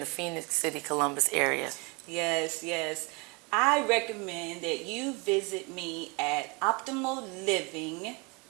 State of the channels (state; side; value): quieter; left; 29.4 dB